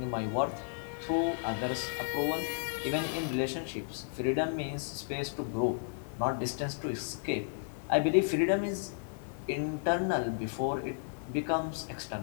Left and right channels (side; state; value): right; silent; 55 dB below the other